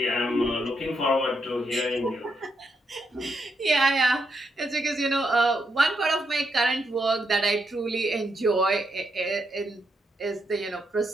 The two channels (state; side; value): normal; both; correlation 0.80